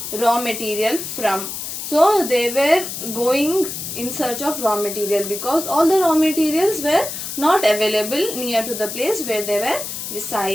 raw material from? So they were going in search of raw material because all the raw materials were not available near to the place where they were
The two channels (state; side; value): noise; left; hiss, 7 dB below the sound